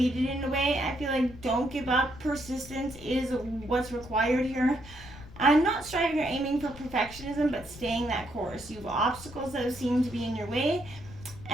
in a way. I feel like don't give up. Persistence is what's required here. I'm not striving or aiming for perfectionism, but staying that course. You have obstacles that seem to be in your way,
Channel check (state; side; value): noise; left; rumble, 17 dB below the sound